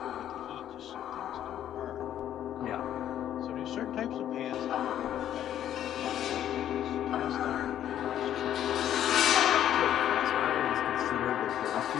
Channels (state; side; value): quieter; right; 11.0 dB